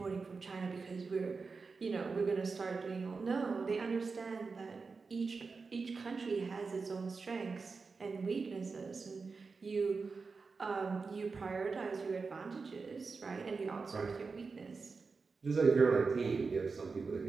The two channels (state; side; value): quieter; left; 4.6 dB